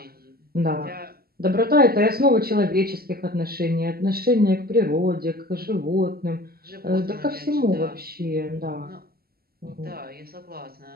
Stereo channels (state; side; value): late; left; 0.45 ms